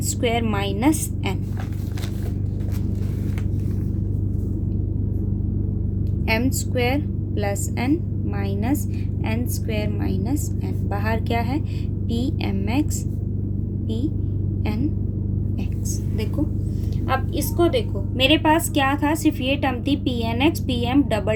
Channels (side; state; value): both; identical; correlation 1.00